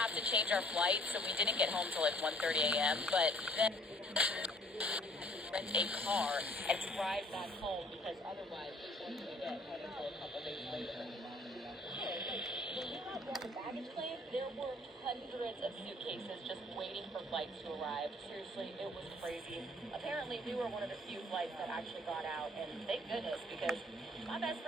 to change our flight, so we didn't get home till like 1:30 a.m., but then rent a car and drive back home because otherwise we wouldn't get home until a couple days later. When we got on the baggage claim, there were hundreds of suitcases just waiting for flights to arrive. Seriously, it was crazy. Apparently, we were one of the few flights that actually got out, and thank goodness, because my best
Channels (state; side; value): normal; both; correlation 0.57